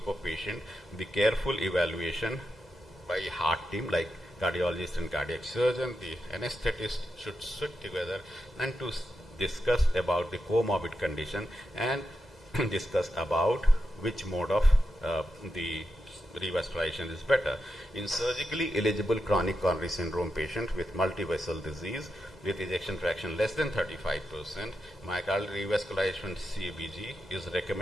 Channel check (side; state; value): both; normal; correlation 0.87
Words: of patients, the careful evaluation by heart team like cardiologist and cardiac surgeon, the anesthetist should sit together and to discuss about the comorbid condition and discuss about which mode of the revascularization is better. In surgically eligible chronic coronary syndrome patient with multivessel disease with ejection fraction less than 35%, myocardial revascularization CABG is